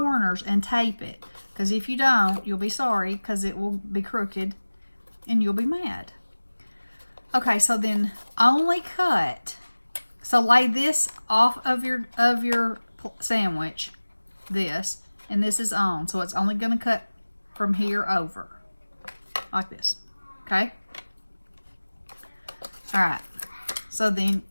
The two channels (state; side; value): inverted; both; correlation -1.00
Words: and tape it, because if you don't, you'll be sorry, because it will be crooked and you'll be mad. Okay, so then only cut. So lay this off of your sandwich, this, and this is on. So it's only going to cut from here over, like this. Okay? All right. So then